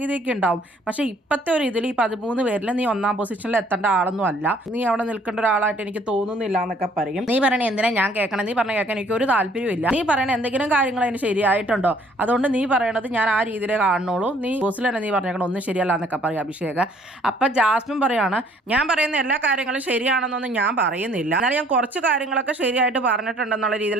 ഉണ്ടാവും. പക്ഷെ ഇപ്പത്തെ ഒരു ഇതിൽ ഈ 13 പേരിൽ നീ ഒന്നാം പൊസിഷനിൽ എത്തേണ്ട ആളൊന്നും അല്ല, നീ അവിടെ നിൽക്കേണ്ട ഒരാളായിട്ട് എനിക്ക് തോന്നുന്നില്ല എന്നൊക്കെ പറയും. നീ പറയണേ എന്തിനാ ഞാൻ കേൾക്കണം, നീ പറഞ്ഞ കേൾക്കാൻ എനിക്ക് ഒരു താല്പര്യമില്ല, നീ പറയണ എന്തെങ്കിലും കാര്യങ്ങൾ അതിന് ശരിയായിട്ടുണ്ടോ, അതുകൊണ്ട് നീ പറയണത് ഞാൻ ആ രീതിയിലേ കാണുന്നുള്ളൂ, നീ ബോസിൽ തന്നെ നീ പറഞ്ഞേക്കണം ഒന്നും ശരിയല്ല എന്നൊക്കെ പറയും അഭിഷേക്. അപ്പൊ ജാസ്മിൻ പറയാണ്, ഞാൻ പറയുന്ന എല്ലാ കാര്യങ്ങളും ശരിയാണെന്നൊന്നും ഞാൻ പറയുന്നില്ല, എന്നാൽ ഞാൻ കുറച്ച് കാര്യങ്ങളൊക്കെ ശരിയായിട്ട് പറഞ്ഞിട്ടുണ്ടെന്നുള്ള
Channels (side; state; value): both; normal; correlation 0.60